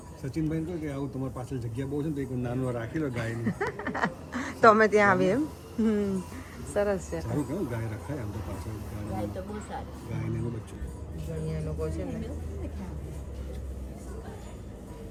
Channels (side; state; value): both; identical; correlation 1.00